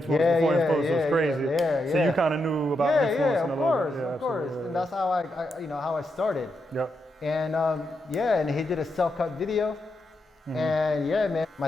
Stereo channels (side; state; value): both; normal; correlation 0.84